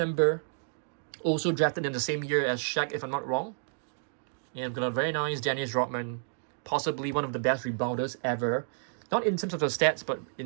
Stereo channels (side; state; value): left; silent; digital silence